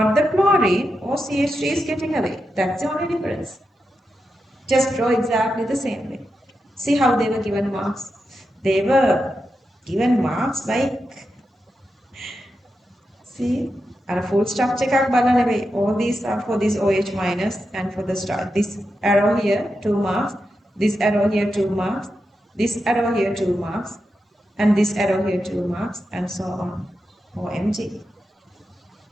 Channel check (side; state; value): both; normal; correlation 0.88